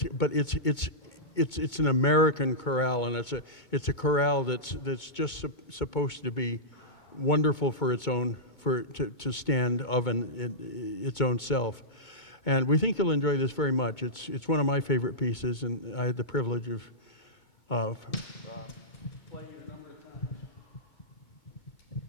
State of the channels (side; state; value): right; late; 2.2 ms